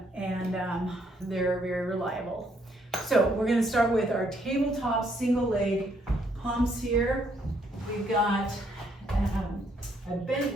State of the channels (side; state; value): both; normal; correlation 0.71